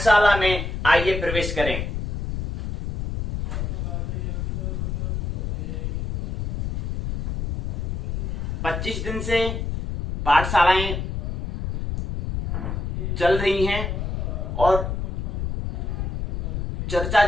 में आइए प्रवेश करें। पच्चीस दिन से पाठशालाएं चल रही हैं और चर्चा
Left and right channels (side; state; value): left; noise; rumble, 3 dB below the sound